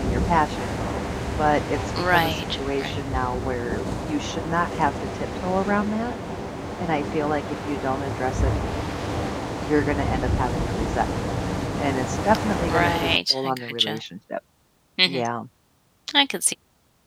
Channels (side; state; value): both; identical; correlation 1.00